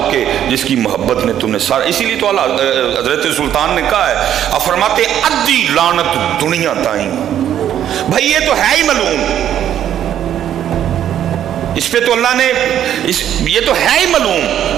کے جس کی محبت نے تم نے سارا، اسی لیے تو حضرت سلطان نے کہا ہے، فرماتے ادی لعنت دنیا تائیں، بھائی یہ تو ہے ہی ملعون، اس پہ تو اللہ نے یہ تو ہے ہی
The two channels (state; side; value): quieter; left; 10.5 dB